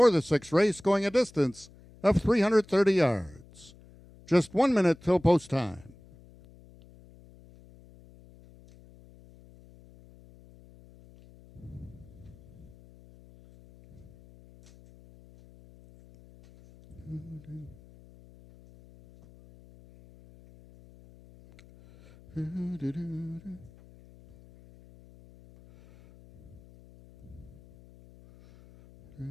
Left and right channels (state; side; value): noise; left; hum, 23 dB below the sound